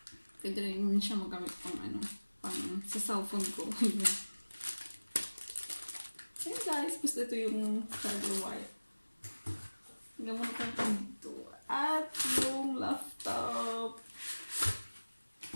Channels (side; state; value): both; inverted; correlation -1.00